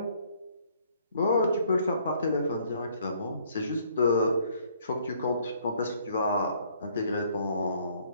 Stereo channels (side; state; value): both; inverted; correlation -0.63